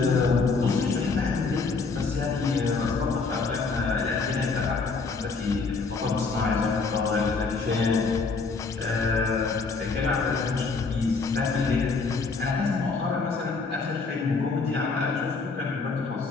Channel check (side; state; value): right; quieter; 4.3 dB